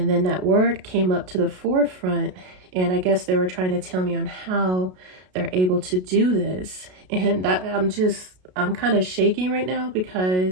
then that word came up to the forefront, and I guess they were trying to tell me on how they're able to do this. And I'm kind of shaking right now,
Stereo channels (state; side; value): late; left; 33 ms